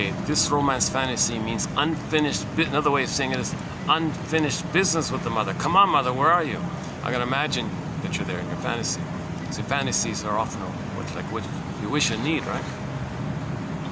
this romance fantasy means unfinished. Another way of saying it is unfinished business with the mother. Come on, mother, where are you? I can imagine that you're there in your fantasy. See, fantasies are often what you wish and need, right?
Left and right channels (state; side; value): identical; both; correlation 1.00